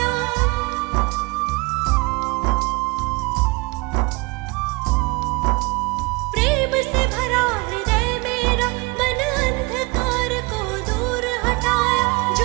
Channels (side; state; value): left; quieter; 25.7 dB